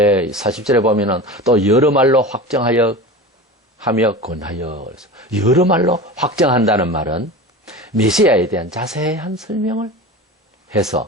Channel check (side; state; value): both; normal; correlation 0.31